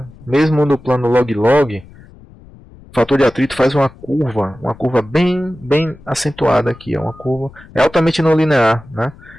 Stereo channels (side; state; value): left; noise; rumble, 22 dB below the sound